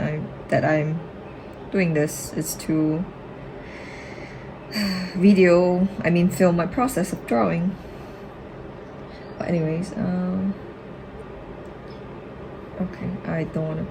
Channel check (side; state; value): both; identical; correlation 1.00